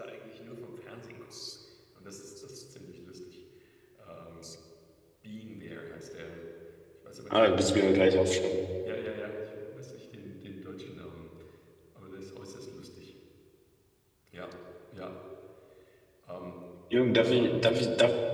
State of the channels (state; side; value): identical; both; correlation 1.00